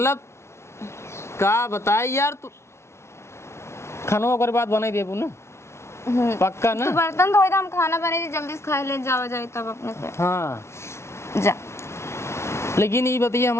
का बताए यार तू खानों के बाद बनाई देबू ना पक्का ना तू बर्तन धोई दे हम खाना बने थे जल्दी से खाए ले जाओ जाए तब अपने से हाँ जा लेकिन ये बताइए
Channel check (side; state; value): right; late; 0.13 ms